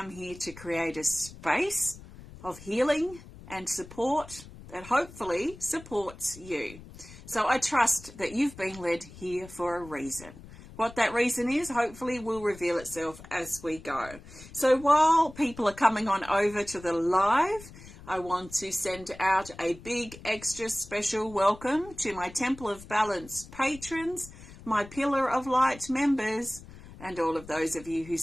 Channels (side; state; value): left; noise; rumble, 17 dB below the sound